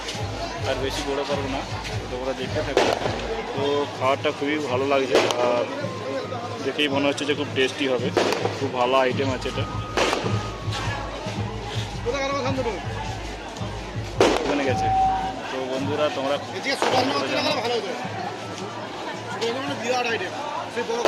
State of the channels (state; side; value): identical; both; correlation 1.00